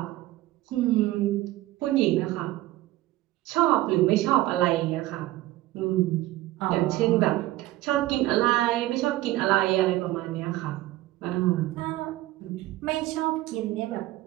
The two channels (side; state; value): left; quieter; 16.6 dB